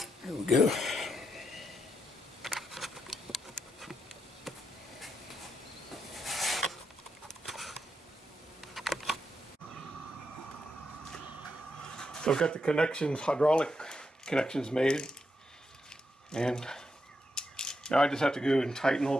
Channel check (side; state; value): both; normal; correlation 0.83